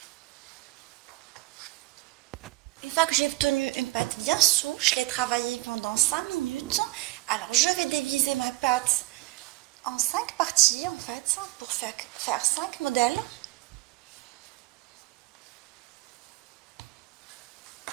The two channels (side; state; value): left; quieter; 20.6 dB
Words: Une fois que j'ai obtenu une pâte bien souple, je l'ai travaillée pendant 5 minutes. Alors je vais diviser ma pâte en 5 parties en fait, pour faire 5 modèles.